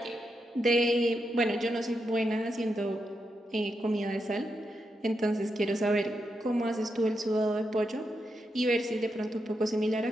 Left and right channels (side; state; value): both; normal; correlation 0.85